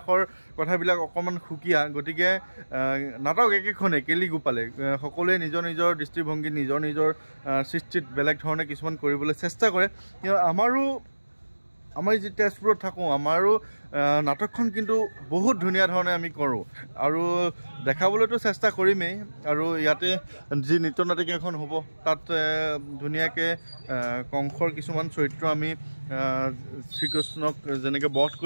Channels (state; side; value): inverted; both; correlation -1.00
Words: কথাবিলাক অকণমান সুকীয়া গতিকে নাটক একেখনেই কেলিগোপালে সকলোৱে নিজৰ দৃষ্টিভংগী নিজৰ সৃষ্টিত বেলেগ ধৰণে কিছুমান কৰিবলৈ চেষ্টা কৰে কিন্তু আমাৰো আমাৰ যি তেজপুৰত থাকোঁ আমাৰো নাটকখন কিন্তু বহুত ধুনীয়া ধৰণে আমি কৰোঁ আৰু দেখাবলৈতো চেষ্টা কৰিমেই আৰু ইয়াতে যি নৃত্য নাটিকাখন হ'ব তাত ধুনীয়াকৈ কংসৰ কিছুমান চৰিত্ৰ আমি শ্ৰীকৃষ্ণক যেনেকৈ বধ